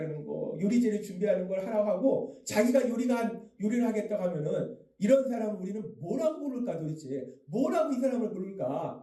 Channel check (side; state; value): both; identical; correlation 1.00